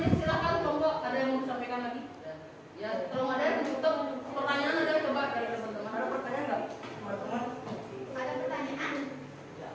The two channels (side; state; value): both; identical; correlation 1.00